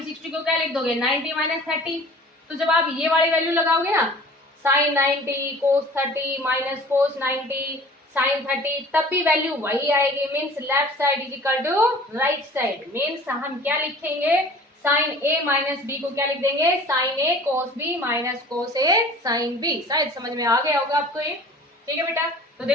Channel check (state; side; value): normal; both; correlation 0.46